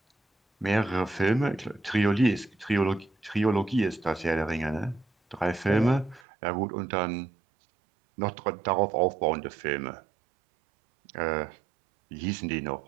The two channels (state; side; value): drops out; left; at 6.2 s